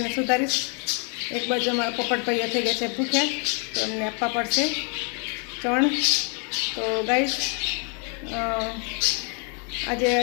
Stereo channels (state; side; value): quieter; right; 37.7 dB